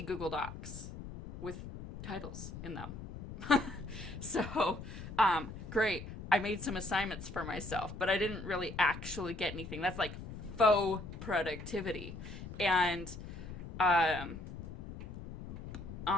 Google Docs with titles in them. So, great. I made some assignments for myself, but I didn't really actually get anything. That's like faux productivity. And on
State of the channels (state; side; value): noise; left; rumble, 10 dB below the sound